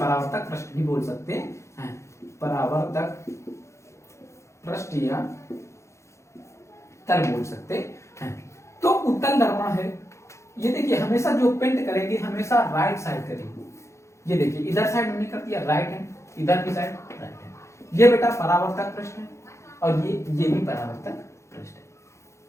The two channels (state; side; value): late; right; 0.14 ms